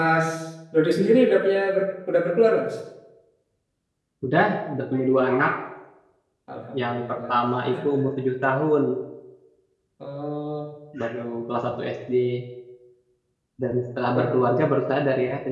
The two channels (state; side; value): identical; both; correlation 1.00